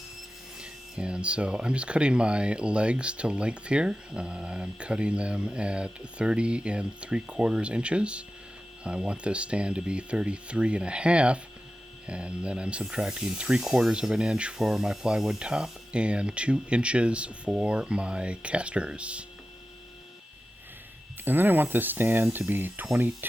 And so I'm just cutting my legs to length here. I'm cutting them at 30 3/4 inches. I want this stand to be 33 1/2, and then I'm subtracting 3/4 of an inch for my plywood top and 2 inches for my casters. And then I want this stand to be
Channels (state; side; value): normal; both; correlation 0.93